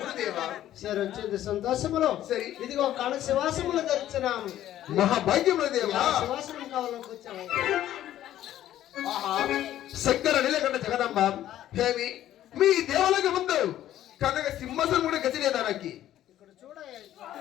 వచ్చింది సంతోషములో. ఇదిగో కళ శివాసములు ధరించినాము. మహాభాగ్యములు దేవా. శివాసనం కావాలని కూర్చోవాలి. శంకర నీలకంఠ జగదంబ హేమి మీ దేవాలయ ముందు కనక సింహాసనం కూడా గతిలేదా నాకు? ఇక్కడ చూడ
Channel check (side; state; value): right; quieter; 12.6 dB